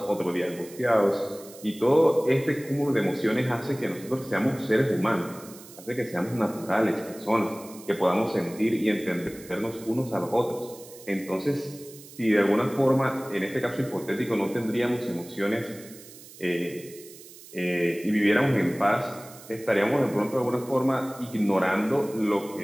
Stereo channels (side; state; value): right; noise; hiss, 19 dB below the sound